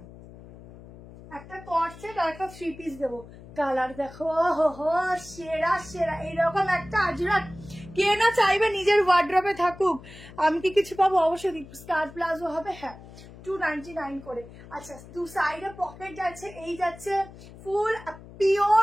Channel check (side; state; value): left; noise; hum, 18 dB below the sound